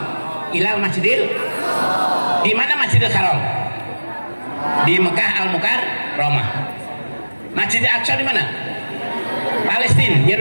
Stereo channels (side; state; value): both; inverted; correlation -1.00